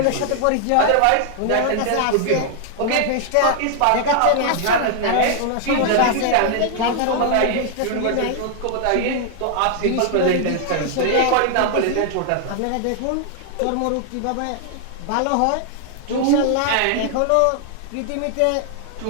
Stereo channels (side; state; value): both; different; correlation 0.00